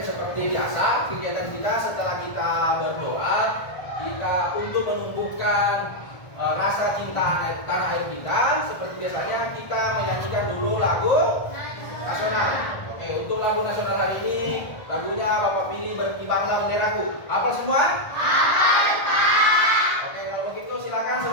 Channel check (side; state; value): right; late; 1.4 ms